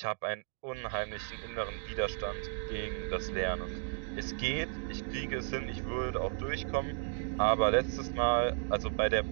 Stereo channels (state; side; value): silent; left; 55 dB below the other